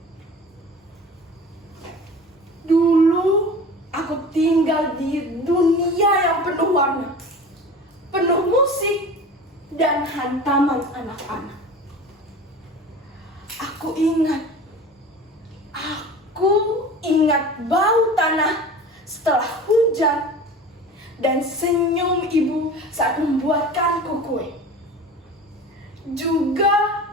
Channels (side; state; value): both; normal; correlation 0.37